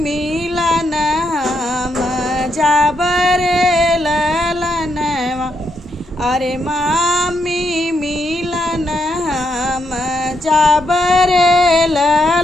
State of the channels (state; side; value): normal; both; correlation 0.79